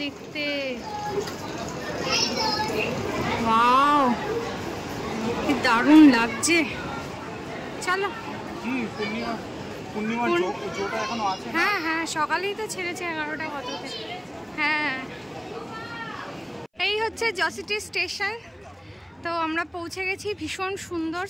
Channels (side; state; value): both; identical; correlation 1.00